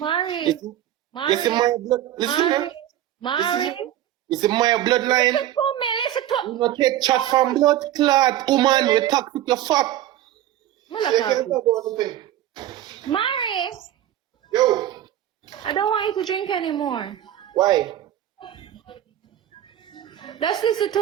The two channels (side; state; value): left; quieter; 12.4 dB